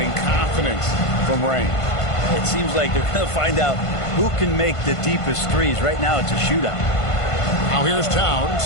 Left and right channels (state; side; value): late; right; 1.5 ms